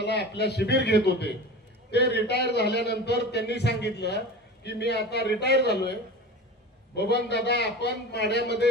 आपल्या शिबिर घेत होते. ते रिटायर झाल्यानंतर त्यांनी सांगितलं की मी आता रिटायर झालोय, बबन दादा आपण माढ्यामध्ये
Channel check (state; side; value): normal; both; correlation 0.33